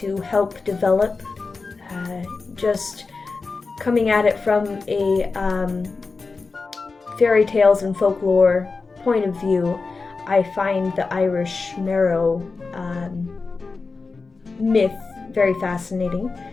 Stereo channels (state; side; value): quieter; right; 4.2 dB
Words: help develop. Just coming at it from a fairy tales and folklore point of view, I find the Irish Merrow myth very fascinating